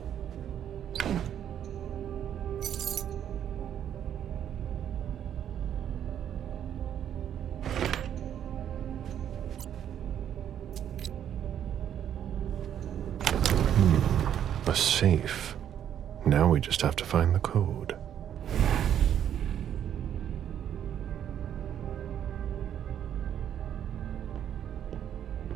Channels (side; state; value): left; quieter; 9.8 dB